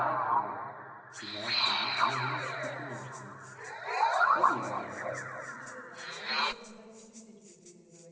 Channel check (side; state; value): both; identical; correlation 1.00